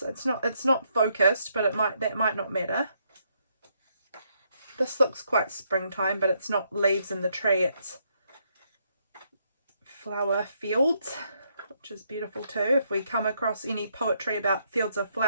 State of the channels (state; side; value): inverted; both; correlation -0.74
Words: it's not focused, but that might not matter. This looks quite springtime, but it's not leaves in the tree, it's flower fields, which is beautiful too. If we come across any poetry about fields of